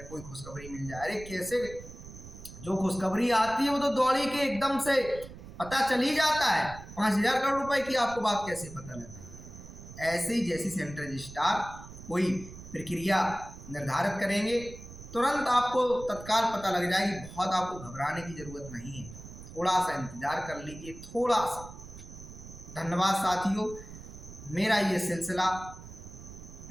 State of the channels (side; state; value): right; noise; rumble, 15 dB below the sound